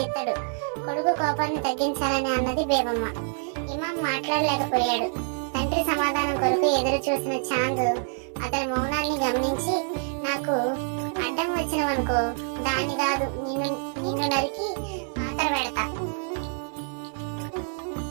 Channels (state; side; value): silent; left; 56 dB below the other